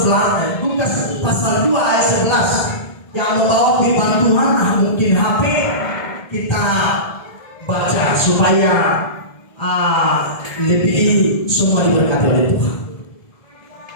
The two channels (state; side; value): late; right; 1.7 ms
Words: Lukas pasal 2 ayat 11 yang membawa firman Tuhan. Mungkin HP kita baca supaya lebih semua diberkati oleh Tuhan.